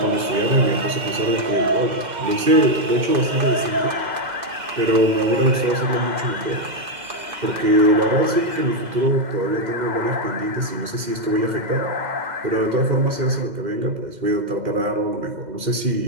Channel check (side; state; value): left; late; 2.1 ms